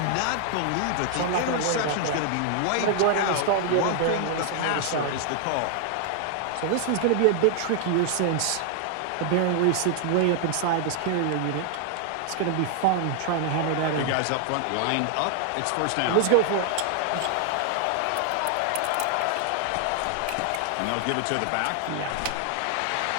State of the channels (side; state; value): both; different; correlation 0.00